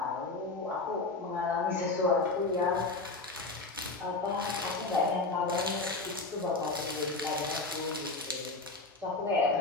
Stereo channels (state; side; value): quieter; right; 3.5 dB